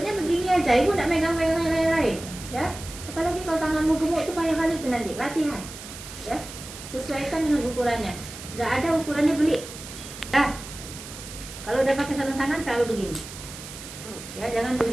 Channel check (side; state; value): right; noise; hiss, 13 dB below the sound